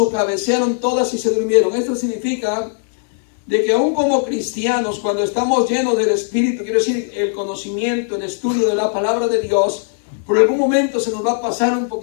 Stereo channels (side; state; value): right; silent; digital silence